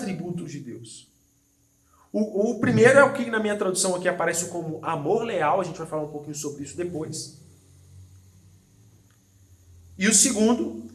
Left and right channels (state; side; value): identical; both; correlation 1.00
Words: de Deus. O primeiro é o que na minha tradução aqui aparece como amor leal, a gente vai falar um pouquinho sobre isso depois. E o segundo